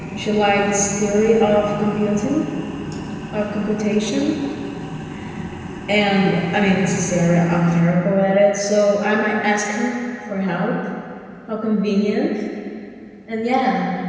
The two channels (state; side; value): identical; both; correlation 1.00